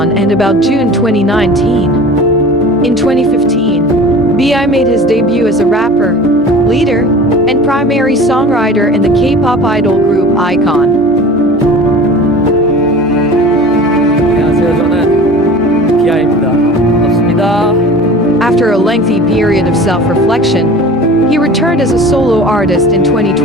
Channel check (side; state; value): right; noise; hum, 23 dB below the sound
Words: and about June 2019. In 2015, B.I made his debut as a rapper, leader, and primary songwriter in the K-pop idol group iKON. 안녕하세요. 저는 비아입니다. 반갑습니다. After a lengthy period of self-reflection, he returned as a solo artist in